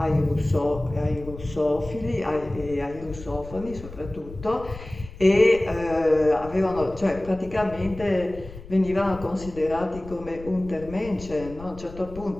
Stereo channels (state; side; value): noise; left; rumble, 15 dB below the sound